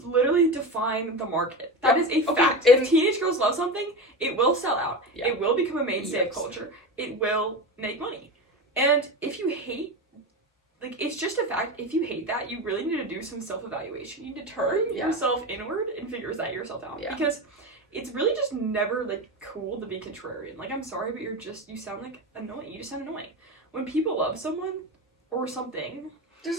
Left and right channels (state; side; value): normal; both; correlation 0.23